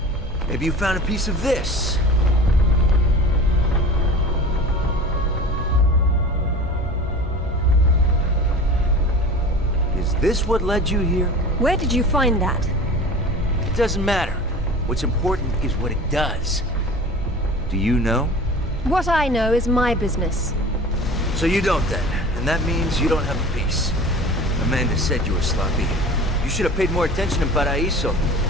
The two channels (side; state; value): both; normal; correlation 0.38